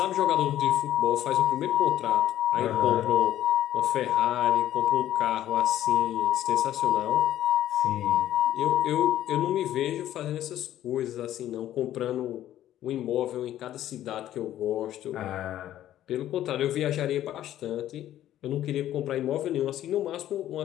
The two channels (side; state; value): right; quieter; 12.5 dB